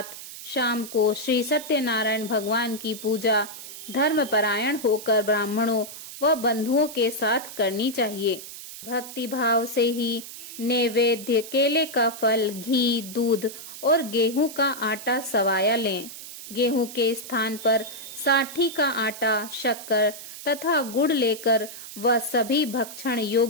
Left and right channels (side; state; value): right; noise; hiss, 12 dB below the sound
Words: शाम को श्री सत्यनारायण भगवान की पूजा धर्मपरायण होकर ब्राह्मणों व बंधुओं के साथ करनी चाहिए। भक्ति भाव से ही नैवेद्य, केले का फल, घी, दूध और गेहूं का आटा सवाया लें। गेहूं के स्थान पर साठी का आटा, शक्कर तथा गुड़ लेकर वह सभी भक्षण